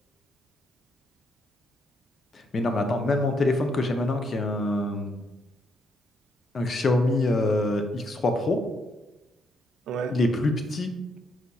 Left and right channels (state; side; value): normal; both; correlation 0.75